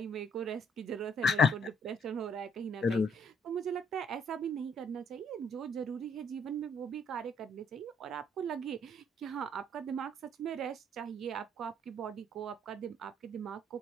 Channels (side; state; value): both; normal; correlation 0.65